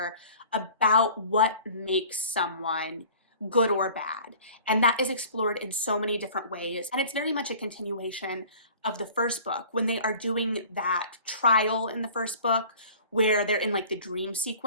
about what makes someone good or bad. And that is explored in so many different ways. And it's very much a continuation of the first book when they are doing that trial in the first book where they're in like the dream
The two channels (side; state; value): both; inverted; correlation -0.46